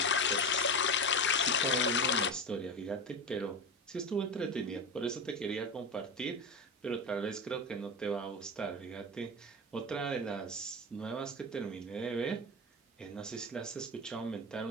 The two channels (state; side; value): normal; both; correlation 0.21